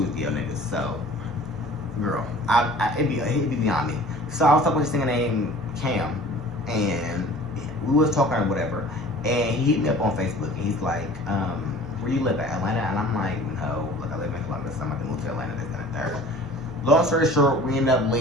is DL niggas. So, girl, it'd be beyond me. So I was talking with this nigga named Cam, and we was talking or whatever, and he hit me up on Facebook, and he's like, "Where you live at, Atlanta?" And I'm like, "No, like I live in Columbus. I'm about to move to Atlanta, this and that." Long story short, we ended up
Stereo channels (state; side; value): normal; both; correlation 0.46